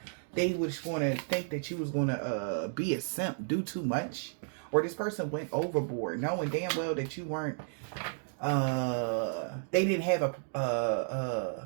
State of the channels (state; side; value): silent; left; digital silence